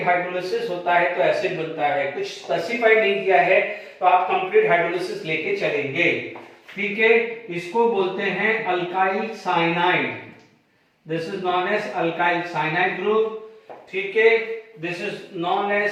होता है तो एसिड बनता है। कुछ स्पेसिफाई नहीं किया है तो आप कंप्लीट हाइड्रोलिसिस लेके चलेंगे। ठीक है, इसको बोलते हैं alkyl cyanide. This is known as alkyl cyanide group. ठीक है, this is known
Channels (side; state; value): both; identical; correlation 1.00